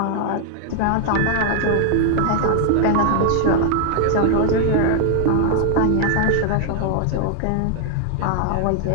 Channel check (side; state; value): both; different; correlation 0.00